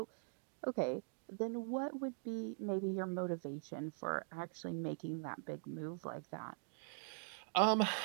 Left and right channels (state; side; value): silent; left; digital silence